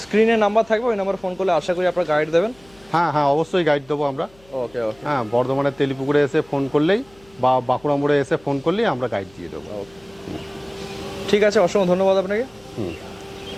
স্ক্রিনে নাম্বার থাকবে, ওই নাম্বার ফোন করলে আশা করি আপনারা গাইড দেবেন। হ্যাঁ, অবশ্যই গাইড দেবো আমরা। ওকে। হ্যাঁ, বর্ধমানের তেলিপুকুরে এসে ফোন করলেই বা বাঁকুড়া মোড়ে এসে ফোন করলেই আমরা গাইড দিয়ে দেবো। ঠিক আছে, অসংখ্য ধন্যবাদ আপনাকে।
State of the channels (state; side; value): noise; left; hum, 28 dB below the sound